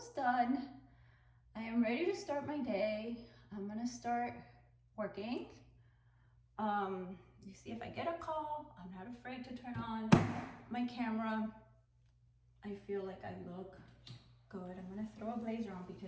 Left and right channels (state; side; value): identical; both; correlation 1.00